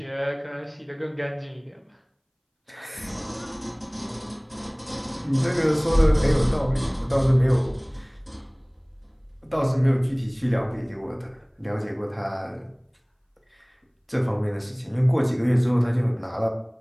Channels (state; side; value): identical; both; correlation 1.00